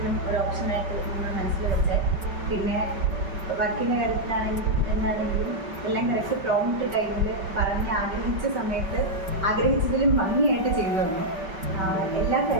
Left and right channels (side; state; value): left; late; 5.2 ms